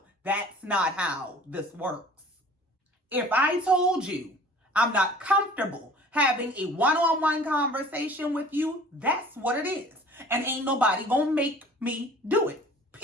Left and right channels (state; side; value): normal; both; correlation 0.48